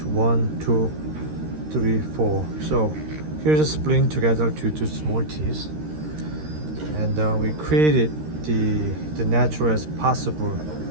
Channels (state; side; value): late; left; 13 ms